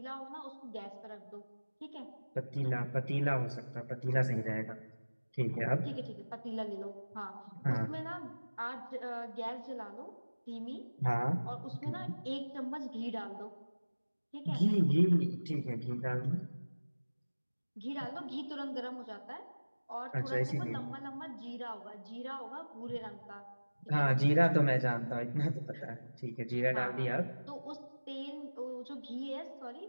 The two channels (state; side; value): inverted; both; correlation -1.00